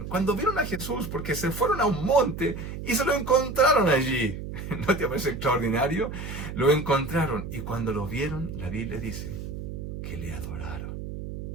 a Jesús, porque se fueron a un monte y se lo encontraron allí. ¿No te parece extraordinario? Lo encontraron y cuando lo vieron, la Biblia dice que le adoraron.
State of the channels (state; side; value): noise; right; hum, 7 dB below the sound